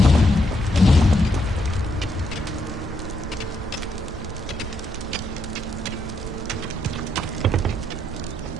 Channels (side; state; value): both; normal; correlation 0.77